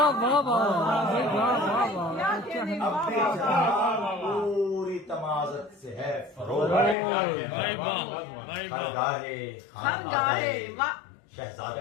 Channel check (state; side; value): drops out; right; at 7.0 s